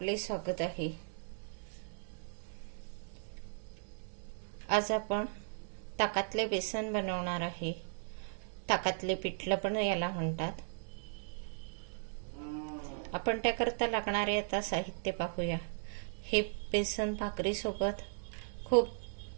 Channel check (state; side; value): silent; left; digital silence